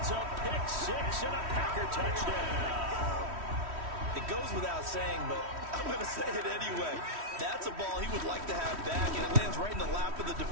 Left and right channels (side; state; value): left; late; 3.1 ms